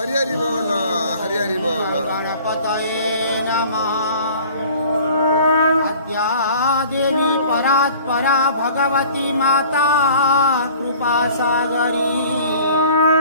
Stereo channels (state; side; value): inverted; both; correlation -0.48